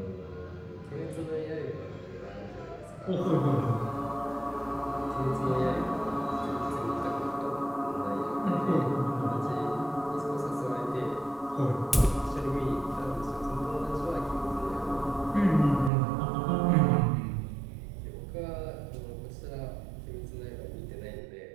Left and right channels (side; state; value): left; drops out; at 15.9 s